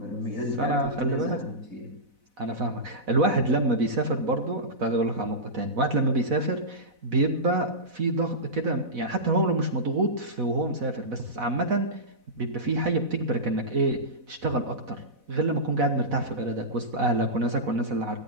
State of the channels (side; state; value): left; late; 4.0 ms